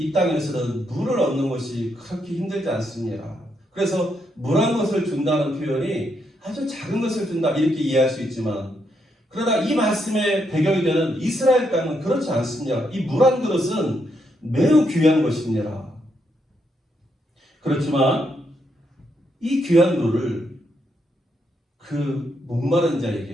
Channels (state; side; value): normal; both; correlation 0.78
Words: 땅에서는 물을 얻는 것이 그렇게 힘들지 않습니다. 그래서 물 한 것을 준다는 표현이 아주 작은 것을 준다, 이렇게 이해할 수 있지만, 그러나 이 말씀의 배경이 되는 이스라엘 땅은 그렇지 않습니다. 이 물 한 그릇은 매우 귀한 것입니다. 그렇지만 이 귀한 물을 그 목마른